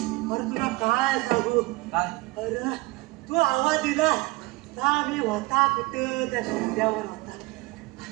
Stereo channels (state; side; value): quieter; left; 22.4 dB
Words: तुला काय सांगू? काय? अरे तू आवाज दिला का मी होता कुठं त्या शिंद्यावर होता.